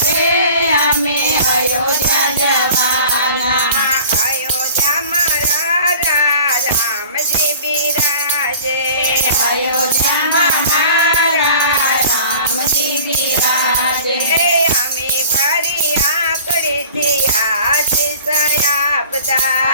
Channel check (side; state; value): both; inverted; correlation -0.44